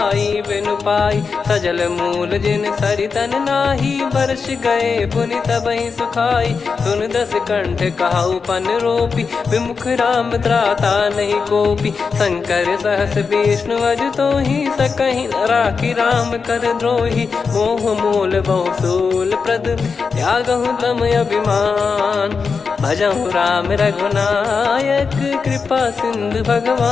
बिनु पाई सजल मूल जिन सरितन नाही वर्ष गए पुनि तबहि सुखाई सुन दस कंठ कहाउ पन रोपी विमुख राम त्राता नहीं कोपी शंकर सहस विष्णु अज तो ही सकहि न राखी राम कर द्रोही मोह मूल बहु सूल प्रद त्यागहु तम अभिमान भजहु राम रघुनायक कृपा सिंधु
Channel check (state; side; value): quieter; right; 5.2 dB